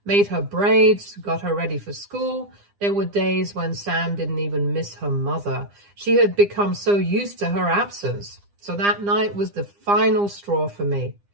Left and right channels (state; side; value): late; left; 9.9 ms